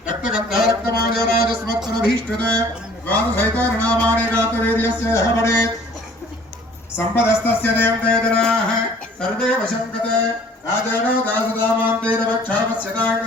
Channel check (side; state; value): both; normal; correlation 0.53